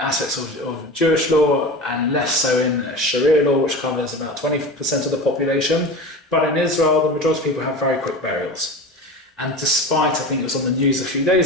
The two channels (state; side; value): normal; both; correlation 0.30